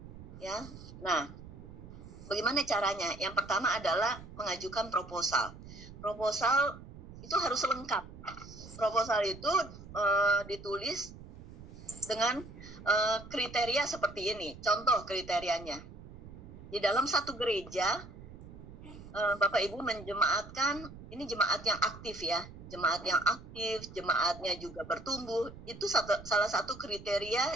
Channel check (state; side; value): noise; right; rumble, 15 dB below the sound